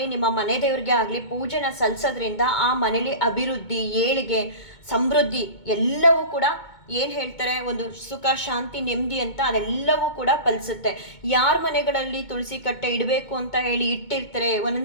ನಿಮ್ಮ ಮನೆ ದೇವರಿಗೆ ಆಗಲಿ ಪೂಜೆನ ಸಲ್ಲಿಸೋದ್ರಿಂದ ಆ ಮನೇಲಿ ಅಭಿವೃದ್ಧಿ ಏಳಿಗೆ ಸಮೃದ್ಧಿ ಎಲ್ಲವೂ ಕೂಡ ಏನು ಹೇಳ್ತಾರೆ, ಒಂದು ಸುಖ ಶಾಂತಿ ನೆಮ್ಮದಿ ಅಂತ ಅದೆಲ್ಲವೂ ಕೂಡ ಫಲಿಸುತ್ತೆ. ಯಾರ ಮನೆಗಳಲ್ಲಿ ತುಳಸಿ ಕಟ್ಟೆ ಇಡಬೇಕು ಅಂತ ಹೇಳಿ ಇಟ್ಟಿರ್ತಾರೆ,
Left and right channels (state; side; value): late; right; 2.2 ms